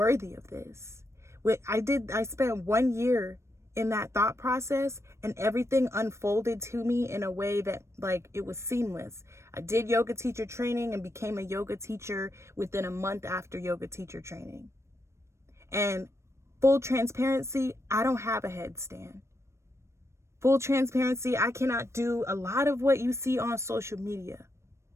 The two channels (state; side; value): late; left; 0.13 ms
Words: of this. I spent 1 year in that thought process, and everything unfolded to me in a way that, like, it was seamless. I did yoga teacher training and became a yoga teacher within a month after yoga teacher training. And full transparency, I don't have a headstand. Full transparency, I cannot do a lot of what you see on social media.